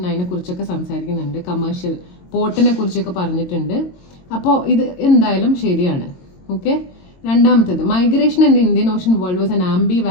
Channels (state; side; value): late; right; 22 ms